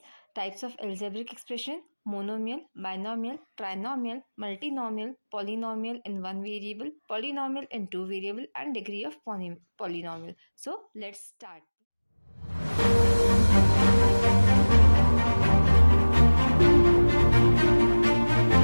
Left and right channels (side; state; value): both; inverted; correlation -1.00